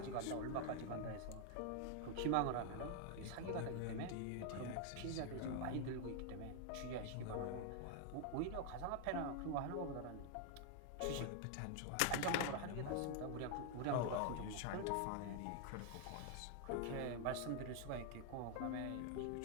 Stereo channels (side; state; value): both; different; correlation 0.00